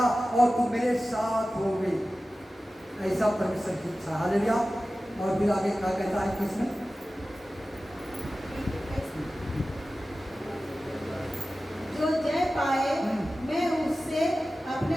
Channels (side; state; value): both; normal; correlation 0.95